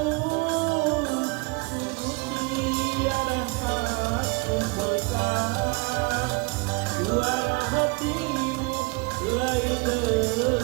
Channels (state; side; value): quieter; left; 27.9 dB